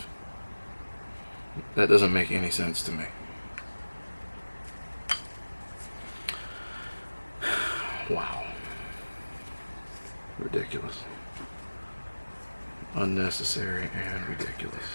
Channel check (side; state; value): both; inverted; correlation -1.00